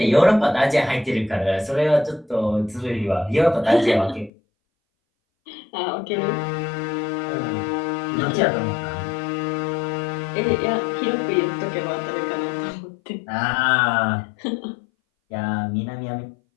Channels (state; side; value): drops out; right; at 4.3 s